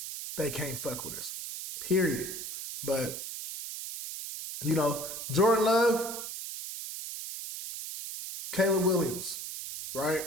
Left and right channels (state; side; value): noise; right; hiss, 7 dB below the sound